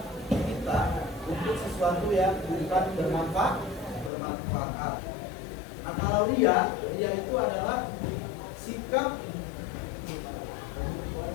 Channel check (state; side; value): drops out; right; at 4.1 s